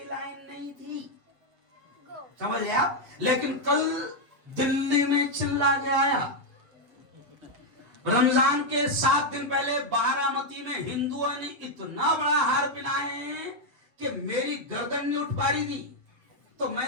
لائن نہیں تھی، سمجھ لیا. لیکن کل دلی میں چلا کے آیا، رمضان کے 7 دن پہلے بارامتی میں ہندوؤں نے اتنا بڑا ہار پہنائے کہ میری گردن نہیں اٹھ پا رہی تھی. تو میں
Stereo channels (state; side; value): late; left; 7.3 ms